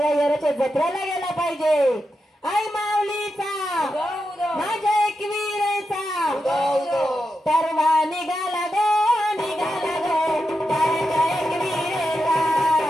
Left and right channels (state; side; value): normal; both; correlation 0.87